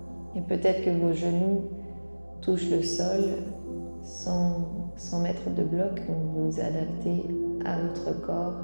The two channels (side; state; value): both; inverted; correlation -1.00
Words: Et peut-être que vos genoux touchent le sol sans mettre de bloc, donc vous vous adaptez à votre